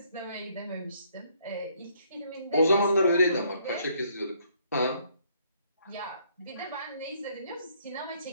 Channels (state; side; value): inverted; both; correlation -0.66